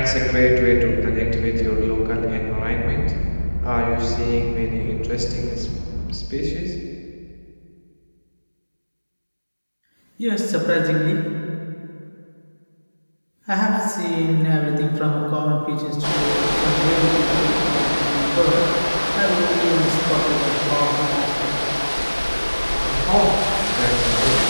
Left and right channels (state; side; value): inverted; both; correlation -1.00